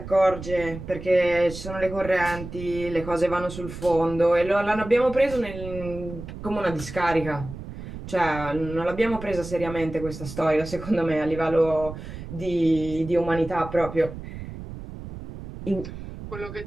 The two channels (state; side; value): noise; right; rumble, 11 dB below the sound